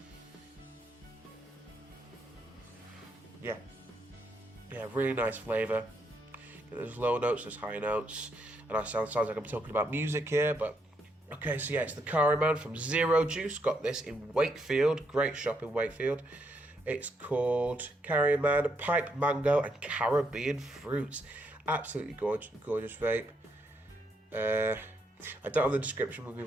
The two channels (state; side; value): normal; both; correlation 0.77